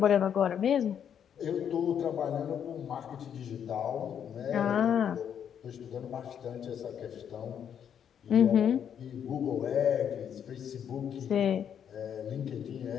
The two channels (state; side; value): quieter; right; 8.6 dB